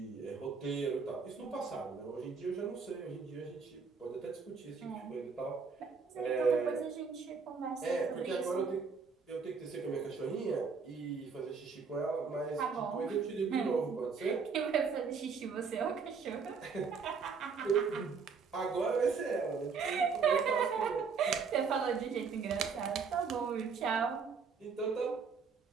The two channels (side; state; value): left; quieter; 5.4 dB